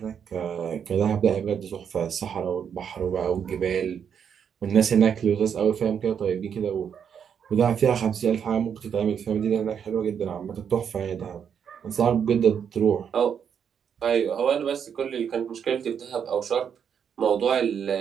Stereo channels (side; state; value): left; quieter; 7.7 dB